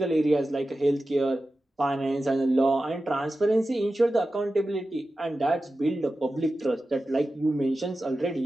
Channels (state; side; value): normal; both; correlation 0.94